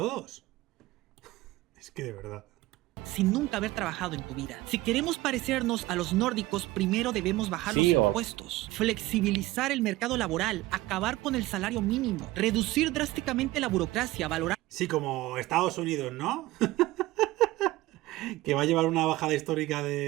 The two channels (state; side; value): quieter; left; 18.1 dB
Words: Es que de verdad. Sin nunca haber trabajado en tu vida. Si queremos parecernos a los nórdicos, primero debemos bajar los impuestos, flexibilizar el mercado laboral, acabar con el salario mínimo, reducir drásticamente la burocracia, valorar... Sí, como Estados Unidos, ¿no? Que va a llevar una bajada histórica